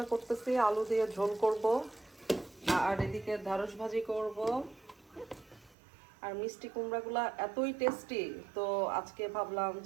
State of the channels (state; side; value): drops out; left; at 5.8 s